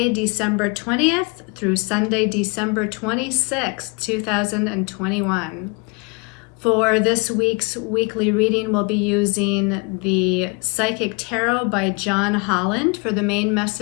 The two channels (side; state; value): right; quieter; 30.7 dB